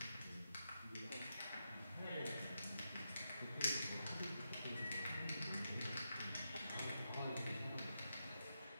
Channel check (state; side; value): inverted; both; correlation -0.86